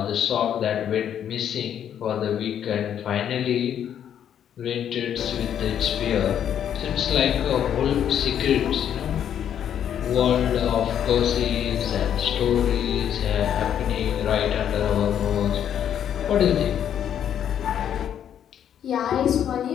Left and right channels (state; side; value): quieter; right; 9.5 dB